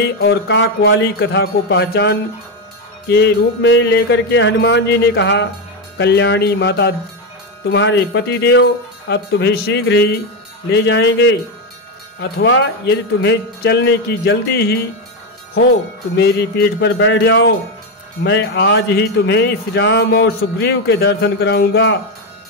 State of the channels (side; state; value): both; normal; correlation 0.09